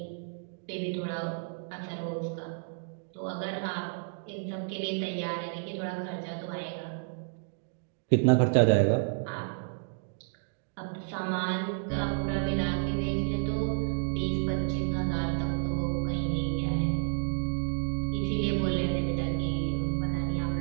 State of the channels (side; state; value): left; silent; digital silence